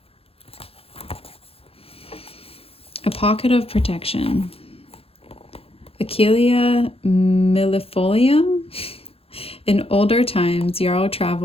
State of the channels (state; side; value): late; right; 0.28 ms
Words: A Pocket of Protection. Achillea millefolium. In older times, Yarrow